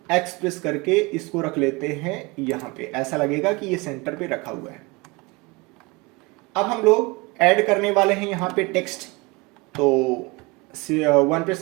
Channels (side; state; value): left; quieter; 25.3 dB